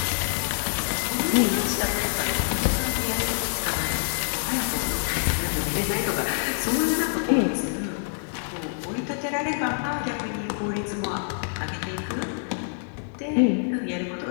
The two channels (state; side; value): silent; right; digital silence